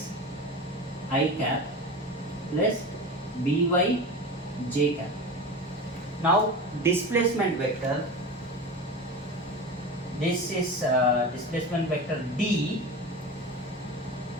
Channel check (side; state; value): both; normal; correlation 0.29